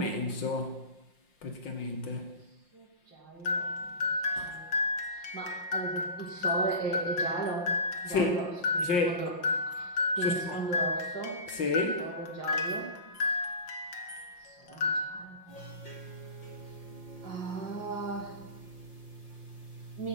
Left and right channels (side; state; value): right; late; 5.7 ms